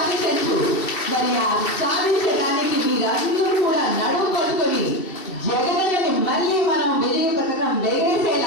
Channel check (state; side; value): late; right; 2.7 ms